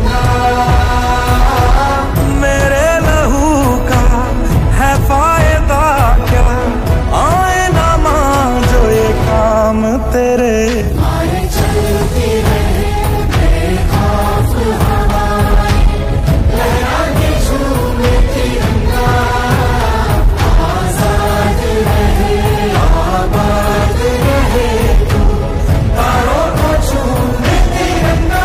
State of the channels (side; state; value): both; identical; correlation 1.00